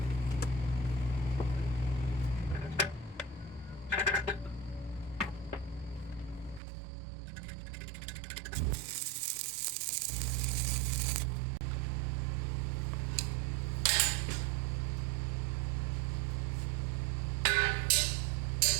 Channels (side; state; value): left; drops out; at 6.6 s